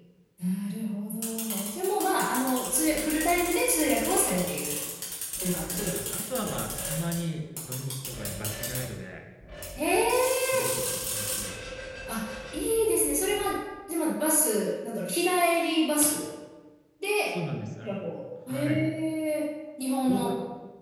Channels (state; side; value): identical; both; correlation 1.00